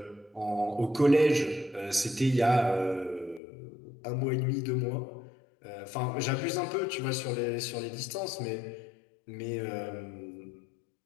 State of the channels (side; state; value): right; drops out; at 3.4 s